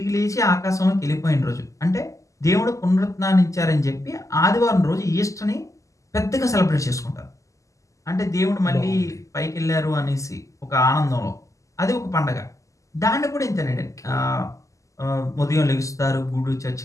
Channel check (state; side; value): late; right; 0.16 ms